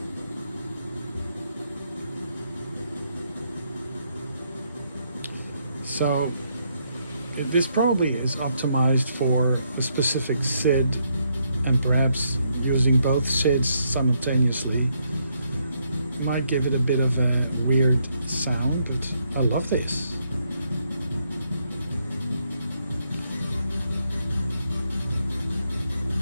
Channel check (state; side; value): inverted; both; correlation -0.76